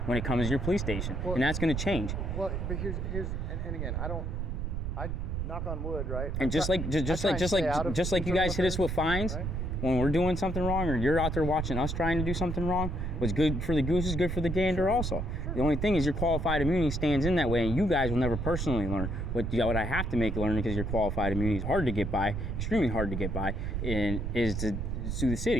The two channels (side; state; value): right; noise; rumble, 2 dB below the sound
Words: when it comes to your police station. Well, and that's going to change. Well, but here's and again, I knock on wood, right? And just like you guys hit us with fines, right? when we're doing something wrong, or you're out there watching us trying to do something wrong, what's good for the goose is good for the gander also. The only thing is your qualified immunity stands in that way, and you guys will never personally learn. What I have to make learn, because your qualified immunity is hard to get by, extremely hard to get by, and is to sue the